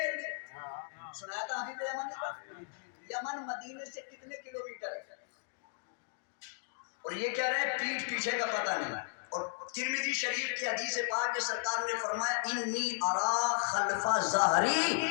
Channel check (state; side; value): silent; right; digital silence